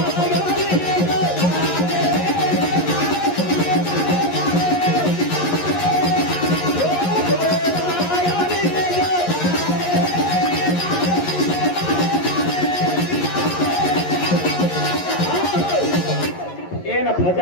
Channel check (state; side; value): late; right; 11 ms